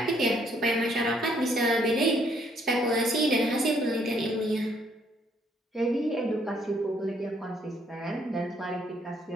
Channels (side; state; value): both; normal; correlation 0.68